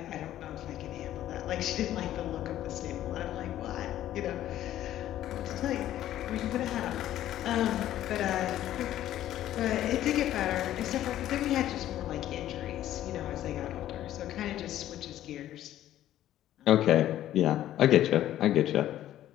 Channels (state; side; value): quieter; right; 12.8 dB